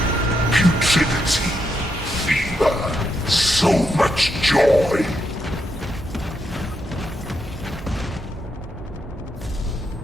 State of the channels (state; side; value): normal; both; correlation 0.81